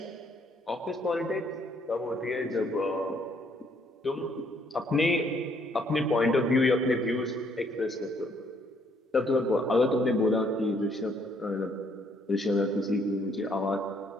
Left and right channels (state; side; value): normal; both; correlation 0.67